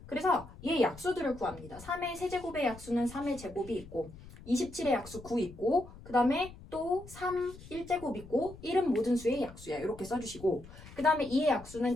그래서 얘 약수들을 구합니다. 3의 세제곱의 약수는 3의 제곱이 있고 27의 약수 9 있고 그 다음에 또 3, 1제곱 있고 1은 모든 수의 약수야. 이렇게 써주시고 그 다음에 2의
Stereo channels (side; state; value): left; noise; rumble, 17 dB below the sound